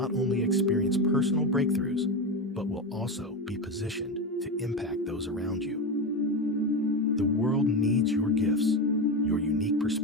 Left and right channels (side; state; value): both; normal; correlation 0.17